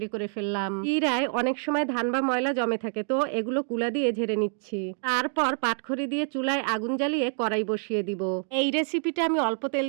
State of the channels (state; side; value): silent; left; 57 dB below the other